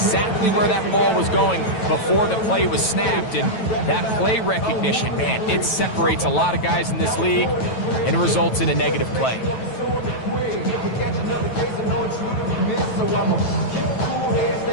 where that ball was going before the play was snapped, and that play recognition, man, it separates a lot of guys in this league, and it results in a negative play. Stay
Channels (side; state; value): right; late; 9.1 ms